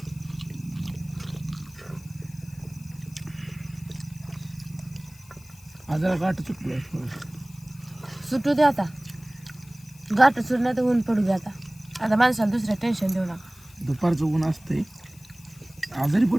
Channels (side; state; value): left; noise; hiss, 24 dB below the sound